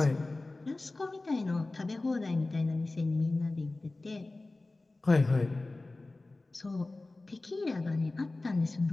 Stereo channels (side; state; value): right; quieter; 3.1 dB